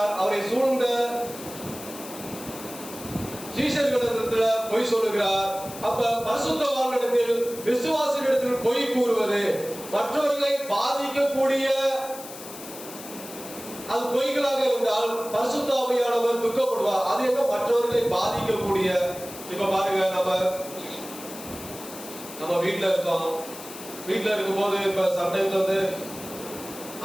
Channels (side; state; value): left; noise; hiss, 14 dB below the sound